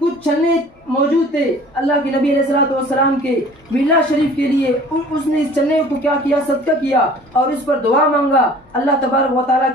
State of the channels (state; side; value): normal; both; correlation 0.48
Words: چنے موجود تھے اللہ کے نبی علیہ الصلوۃ والسلام کے میلاد شریف کے لیے. اس نے اس چنے کو کیا کیا؟ صدقہ کیا اور اس پر دعا مانگا، اللہ تبارک و تعالیٰ